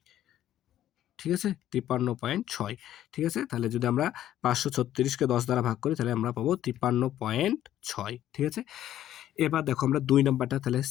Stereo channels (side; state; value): right; quieter; 12.2 dB